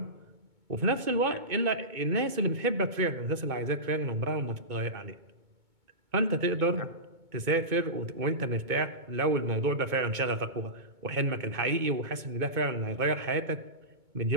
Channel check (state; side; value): late; left; 2.2 ms